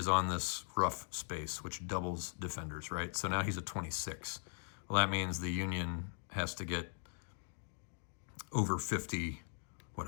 on this rough space, which doubles defenders, right? So now he's at 26. Well, that means the Union has to get over 50, a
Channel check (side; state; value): right; silent; 51 dB below the other